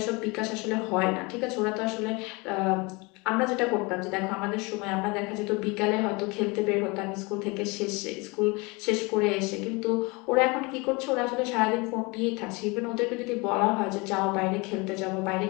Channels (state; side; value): quieter; right; 26.8 dB